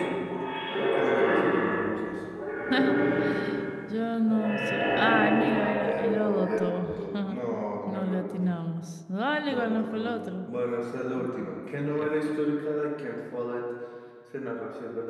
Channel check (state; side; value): identical; both; correlation 1.00